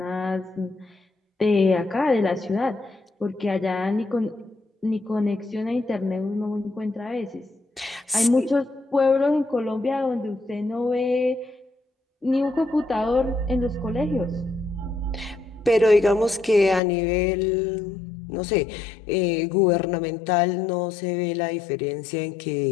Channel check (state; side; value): drops out; right; at 16.8 s